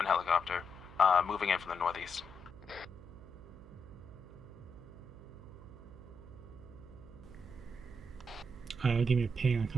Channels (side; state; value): right; noise; hum, 17 dB below the sound